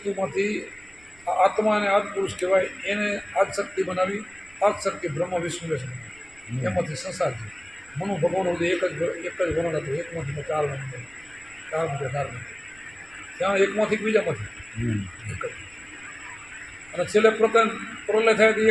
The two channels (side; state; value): right; noise; rumble, 27 dB below the sound